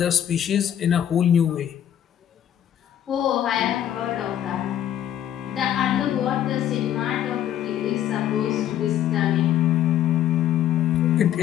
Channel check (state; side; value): quieter; right; 10.8 dB